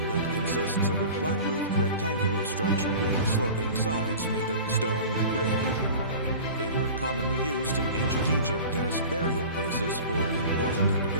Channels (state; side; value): inverted; both; correlation -0.38